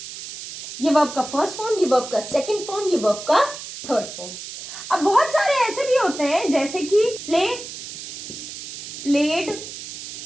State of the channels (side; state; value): right; noise; hiss, 10 dB below the sound